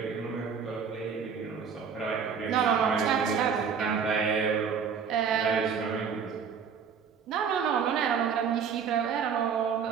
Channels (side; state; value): left; quieter; 6.7 dB